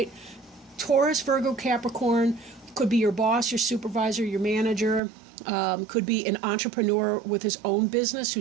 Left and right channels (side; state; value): left; drops out; at 5.0 s